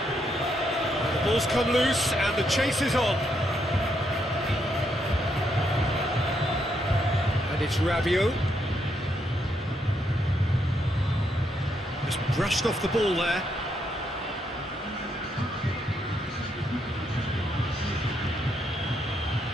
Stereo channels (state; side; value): normal; both; correlation 0.77